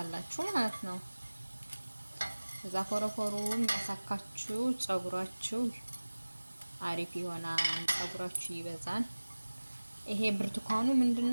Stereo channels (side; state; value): both; inverted; correlation -1.00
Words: ማለት ነው። ከዛ ፎረፎሩን ያሳካችሁ ጸጉራችሁ አሪፍ ይሆናል፣ ጸጉራችሁ ይበዛል። ይሄ ብርቱካኑ